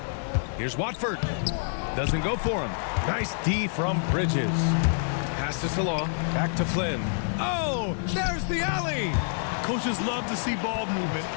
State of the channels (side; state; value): right; silent; digital silence